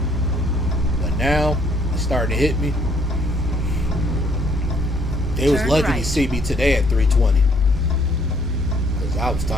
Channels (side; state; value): both; normal; correlation 0.64